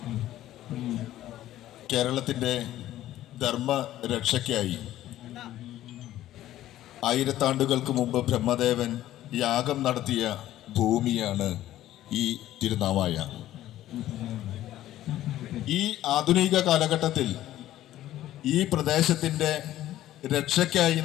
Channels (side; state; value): right; quieter; 13.7 dB